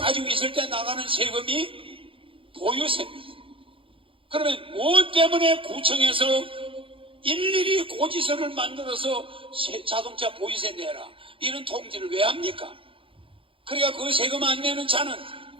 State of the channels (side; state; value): left; late; 0.26 ms